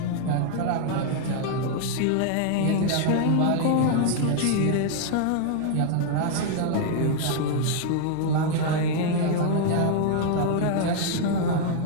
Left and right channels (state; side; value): different; both; correlation 0.00